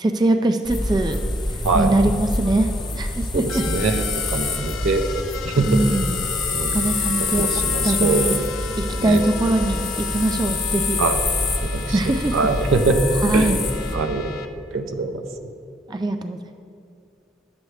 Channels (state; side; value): normal; both; correlation 0.66